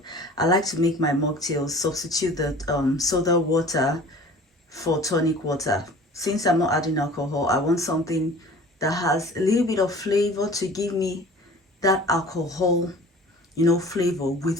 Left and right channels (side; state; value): both; normal; correlation 0.44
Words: I like to make my mocktail substitute the soda water for tonic water. Since I'm not adding alcohol, I want something that has a little bit of flavor to give me that alcohol, flavor